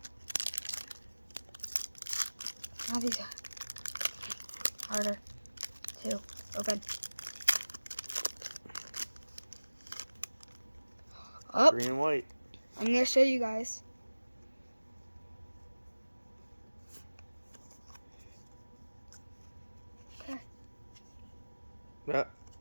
Oh, these are harder to open. Oh, Green and white. I'm going to show you guys. Okay.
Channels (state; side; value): inverted; both; correlation -1.00